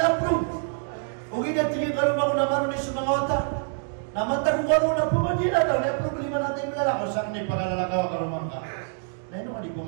approve. Ug tingin karon ako na maron sa mga otak. Namantag ko karon na pumagina daw na problema natin lalakaw sa kanay pagkalalakaw karon man ka. Naino ka di ko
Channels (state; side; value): silent; left; digital silence